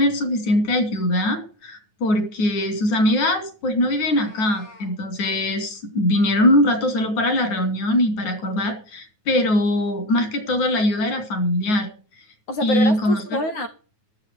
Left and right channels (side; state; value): right; late; 9.4 ms